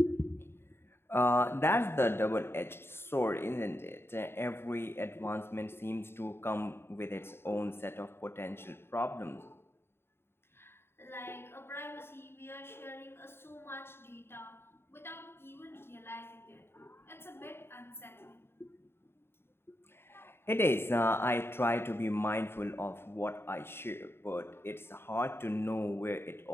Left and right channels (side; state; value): right; late; 0.11 ms